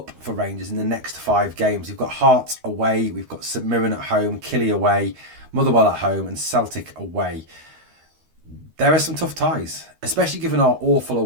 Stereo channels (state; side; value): late; left; 13 ms